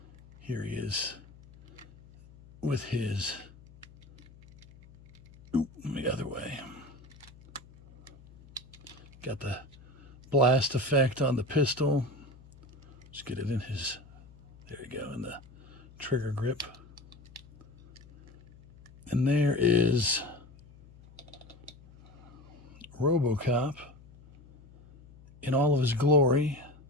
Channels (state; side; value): noise; left; hum, 23 dB below the sound